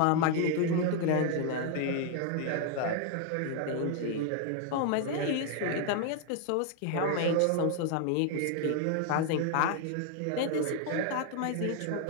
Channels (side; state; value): both; different; correlation 0.00